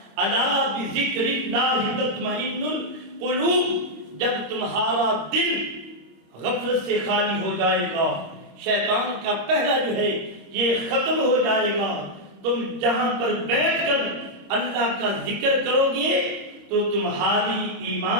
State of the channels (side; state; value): left; late; 26 ms